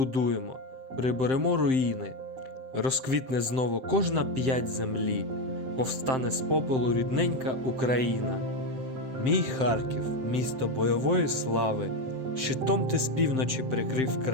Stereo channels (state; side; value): late; left; 7.6 ms